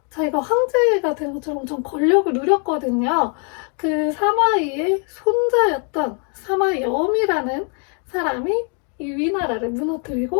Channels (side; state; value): right; quieter; 38.9 dB